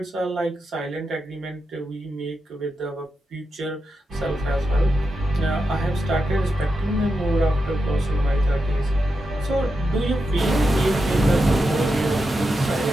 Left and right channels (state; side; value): normal; both; correlation 0.88